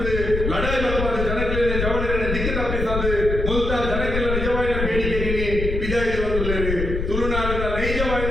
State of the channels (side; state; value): left; noise; rumble, 3 dB below the sound